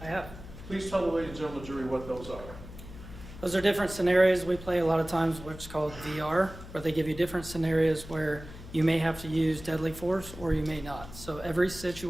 I have. Please tell the ladies and gentlemen of the jury what those are. Those are different scenarios we play a lot of times, what's called VR, where they give you different scenarios where you may have to use deadly force or you may not. So every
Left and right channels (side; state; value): left; noise; hum, 14 dB below the sound